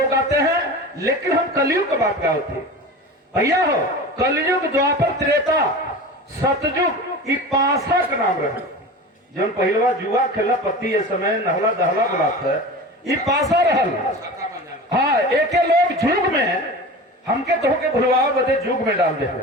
आते हैं, लेकिन हम कलयुग की बात करते हैं भैया। हो कलयुग, द्वापर, त्रेता, सतयुग, ई पासा का नाम रहे। जब पहलवा जुआ खेला पति ये समय नहला दहला बुलात है, ई पासा रहल। हाँ, एक लोग जुग में हमके तो के भुलवाओ बदे जुग में डाल दे।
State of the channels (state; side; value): normal; both; correlation 0.33